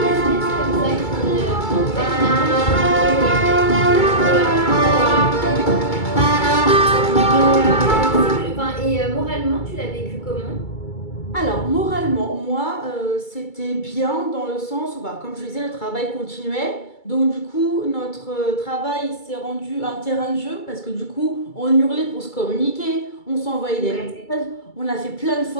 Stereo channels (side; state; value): right; late; 2.3 ms